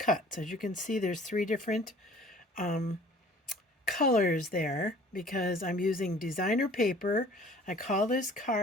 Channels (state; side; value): normal; both; correlation 0.50